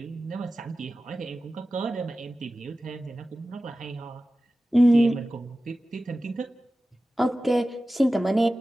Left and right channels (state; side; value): normal; both; correlation 0.95